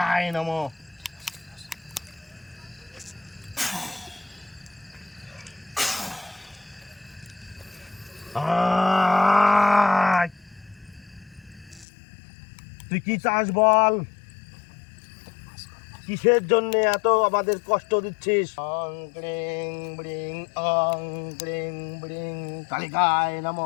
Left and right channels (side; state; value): right; drops out; at 11.9 s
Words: নমঃ। আয়, তুই কি চাস বল? কিসের জন্য এত আমাদের কষ্ট দিচ্ছিস? অং ক্রিং ব্রিং, অং ক্রিং ব্রিং কালিকায়